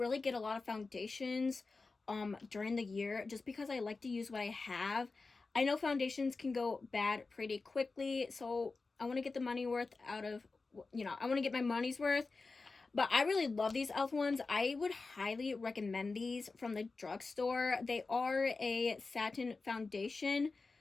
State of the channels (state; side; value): quieter; right; 3.9 dB